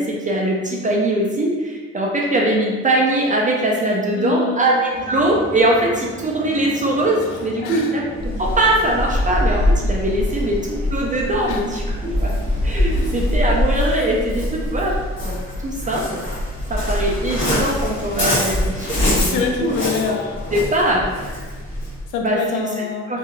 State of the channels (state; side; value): normal; both; correlation 0.37